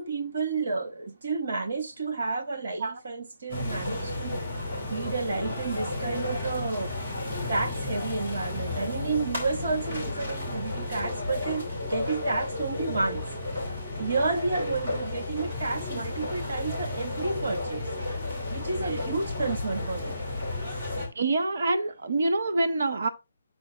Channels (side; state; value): both; inverted; correlation -0.78